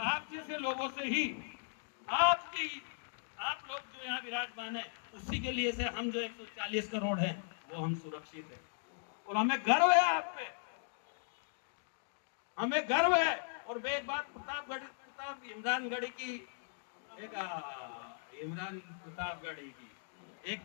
जैसे लोगों से ही आप लोग जो यहाँ विराजमान है, उसी के लिए से हम जो 140 करोड़ हैं वो हम सुरक्षित हैं। और हमें गर्व है आप पे, हमें गर्व है। और मैं एक बात इमरानगढ़ी की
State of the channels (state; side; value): silent; right; digital silence